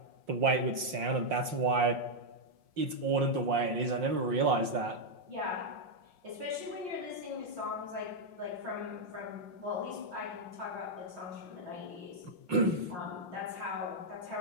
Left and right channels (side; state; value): left; late; 5.6 ms